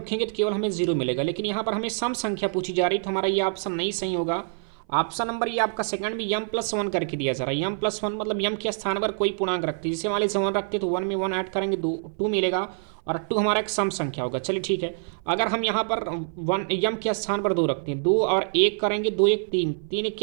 तो केवल हमें जीरो मिलेगा। लेकिन यहाँ पर हमें सम संख्या पूछी जा रही तो हमारा ये ऑप्शन नहीं सही होगा। ऑप्शन नंबर ये आपका सेकंड में m+1 करके दिया जा रहा है। m+1 मतलब यम के स्थान पर कोई पूर्णांक रखते हैं, जैसे मान लीजिए 1 रखते तो 1 में 1 ऐड करेंगे 2 मिलेगा, और 2 हमारा एक सम संख्या होगा। चलिए ठीक है। अगर हम यहाँ पर 1 यम के स्थान पर 2 रखते हैं, 2 और 1 करेंगे, 2 1 3, 3 एक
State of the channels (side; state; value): left; silent; 56 dB below the other